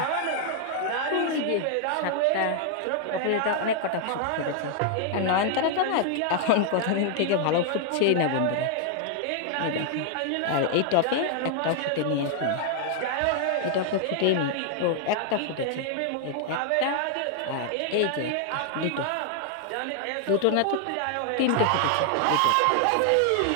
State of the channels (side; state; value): both; different; correlation 0.00